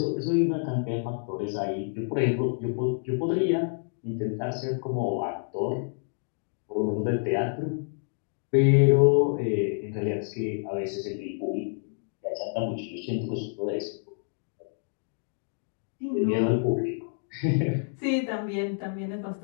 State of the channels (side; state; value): right; silent; digital silence